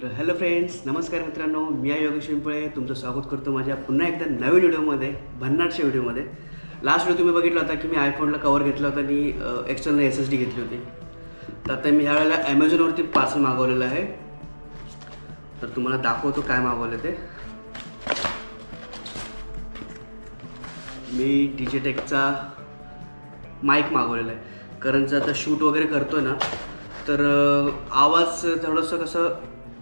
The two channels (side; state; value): both; inverted; correlation -1.00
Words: हॅलो फ्रेंड्स, नमस्कार मित्रांनो. मी आहे योगेश पिंपळे. तुमचं स्वागत करतो माझ्या पुन्हा एकदा नवीन व्हिडिओमध्ये, भन्नाटच्या व्हिडिओमध्ये. लास्ट व्हिडिओ तुम्ही बघितला होता की मी आयफोनला कवर घेतला होता आणि एक्सटर्नल SSD घेतली होती. तर आता मी ह्यावेळेला ॲमेझॉनवरती पार्सल मागवलेलं आहे. तर तुम्हाला दाखवतो काय मागवलं ते. मी डिजिटेकचा माईक मागवलेला आहे. कारण जर आता शूट वगैरे करतो ना, तर आवाज थोडंसं कसं